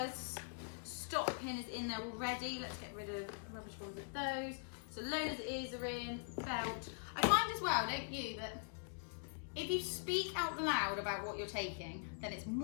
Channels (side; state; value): right; silent; digital silence